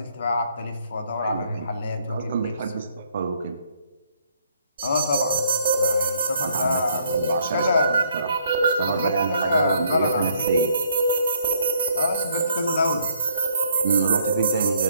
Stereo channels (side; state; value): both; inverted; correlation -0.67